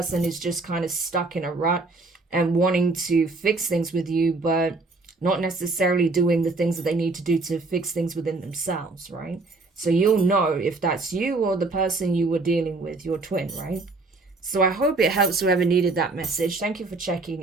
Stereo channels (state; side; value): quieter; left; 3.5 dB